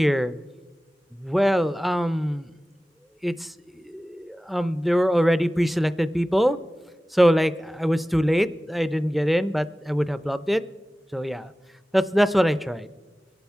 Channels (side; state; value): both; normal; correlation 0.96